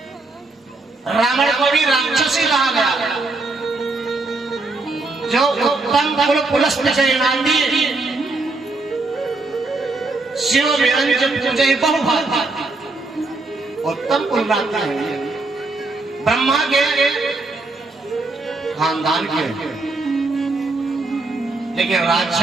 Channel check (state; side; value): quieter; left; 3.4 dB